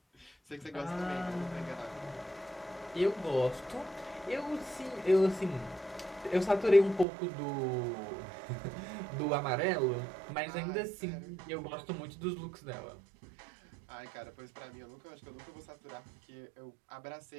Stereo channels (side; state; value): left; drops out; at 7.1 s